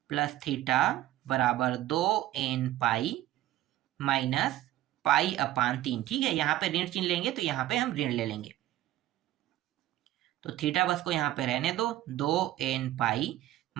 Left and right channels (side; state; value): left; quieter; 14.5 dB